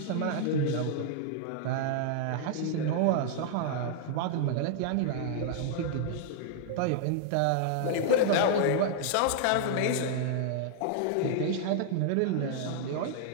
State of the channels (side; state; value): both; different; correlation -0.01